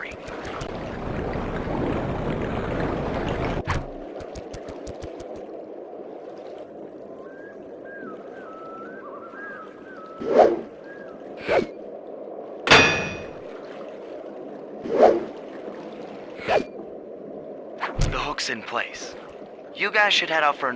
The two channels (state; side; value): identical; both; correlation 1.00